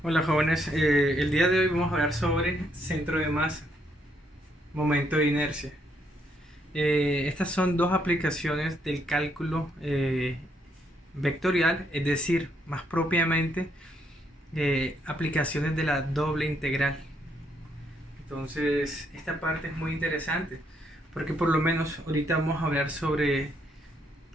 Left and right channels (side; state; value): both; normal; correlation 0.73